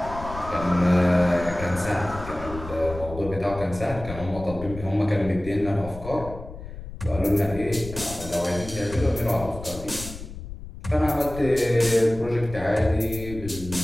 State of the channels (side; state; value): left; noise; rumble, 12 dB below the sound